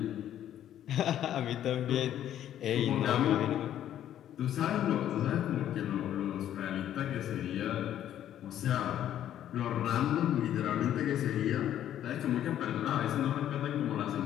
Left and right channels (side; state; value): right; quieter; 11.2 dB